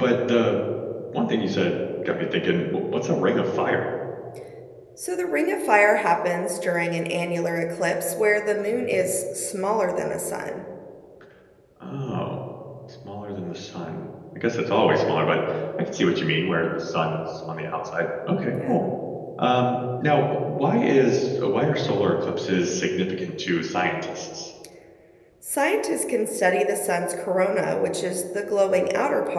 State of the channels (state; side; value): identical; both; correlation 1.00